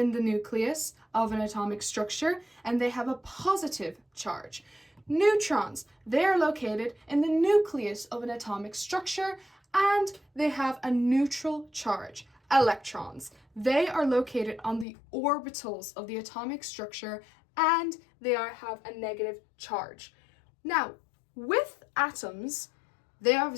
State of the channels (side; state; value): right; drops out; at 14.9 s